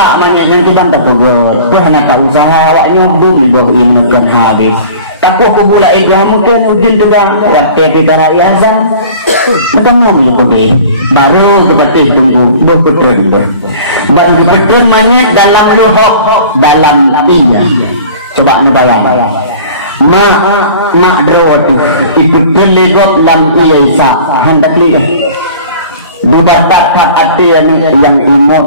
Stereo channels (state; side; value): inverted; both; correlation -0.44